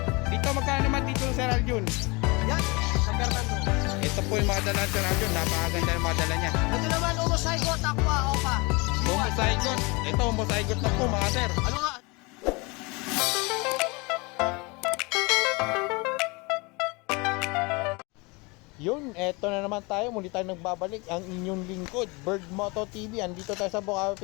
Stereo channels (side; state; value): right; quieter; 27.1 dB